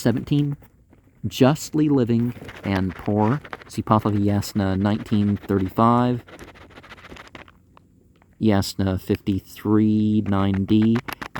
justly living and poor. See Pahlavi 19:35, Yasna 53, 9d,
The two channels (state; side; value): identical; both; correlation 1.00